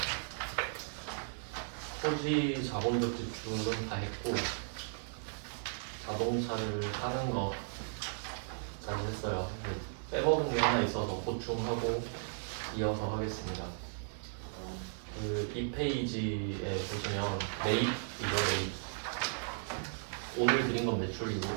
토지 자본적 지출은 다 했고 자동차를 사는 거까지 했어요. 빼먹은 게 하나 있어서 보충하고 이어서 하겠습니다. 이 페이지에 보시면 매입이죠. 매입. 오늘 드린 건 매출이고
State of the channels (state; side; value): silent; left; digital silence